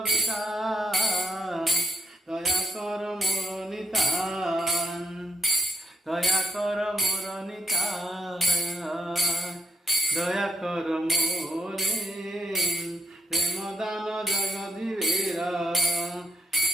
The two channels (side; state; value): both; normal; correlation 0.76